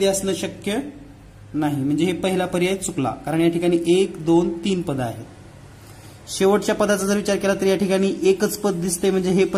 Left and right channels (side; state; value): both; identical; correlation 1.00